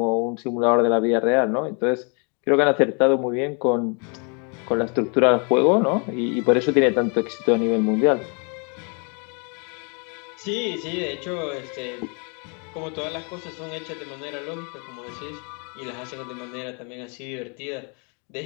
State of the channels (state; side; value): quieter; right; 36.3 dB